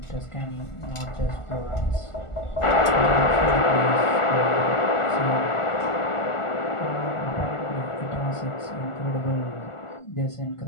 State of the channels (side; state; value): right; late; 1.4 ms